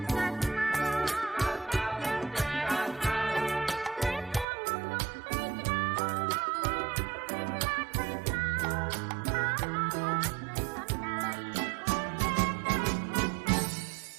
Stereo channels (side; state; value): left; drops out; at 4.5 s